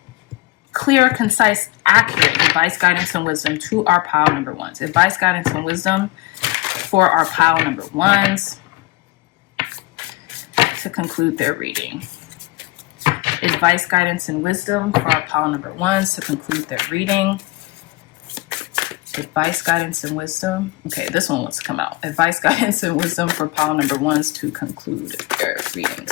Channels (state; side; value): quieter; right; 20.4 dB